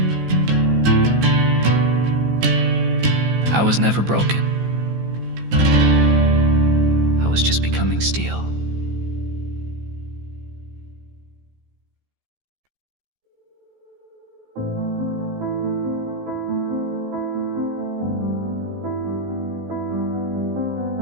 I was never broken. I was just becoming steel.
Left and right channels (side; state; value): left; late; 15 ms